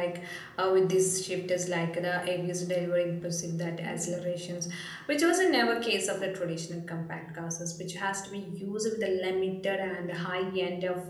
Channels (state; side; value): identical; both; correlation 1.00